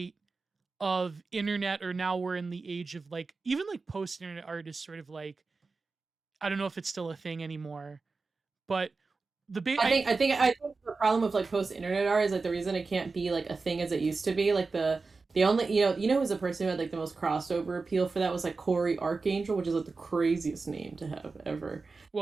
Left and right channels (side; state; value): left; quieter; 4.1 dB